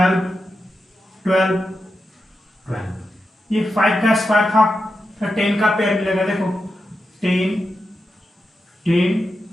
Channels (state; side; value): normal; both; correlation 0.89